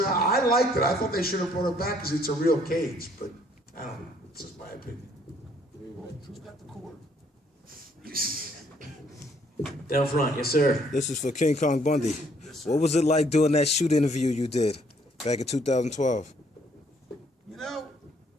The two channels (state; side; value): normal; both; correlation 0.65